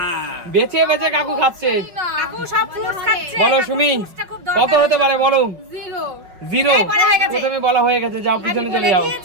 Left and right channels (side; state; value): left; late; 5.5 ms